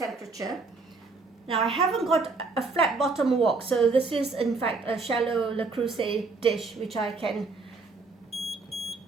Now I haven't got a flat bottom wok, so this is in fact a shallow Le Creuset dish which I can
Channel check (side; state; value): left; quieter; 4.0 dB